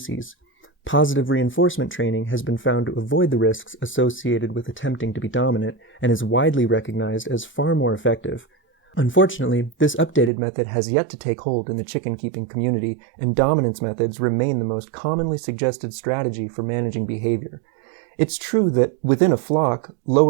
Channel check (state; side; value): drops out; left; at 10.3 s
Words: Positive reinforcement training has been found to avoid the risks associated with attempting to be dominant and is widely recognized as far more effective. Unfortunately, this updated method has yet to take hold in the chicken-keeping community, and dominance methods remain the most commonly suggested strategy for managing behavior. It's true that within a flock,